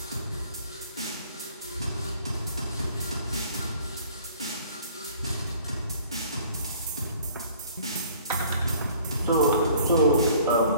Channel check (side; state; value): both; inverted; correlation -0.53